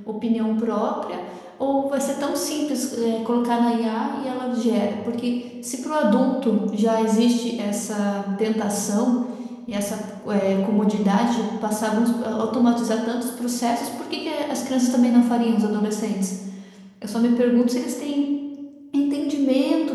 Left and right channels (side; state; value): both; identical; correlation 1.00